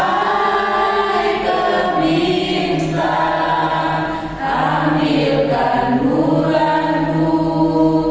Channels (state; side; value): identical; both; correlation 1.00